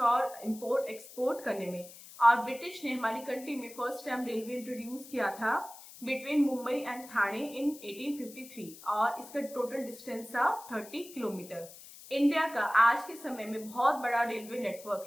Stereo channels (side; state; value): left; noise; hiss, 17 dB below the sound